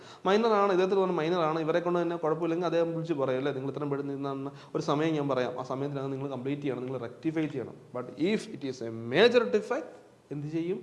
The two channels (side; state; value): both; identical; correlation 1.00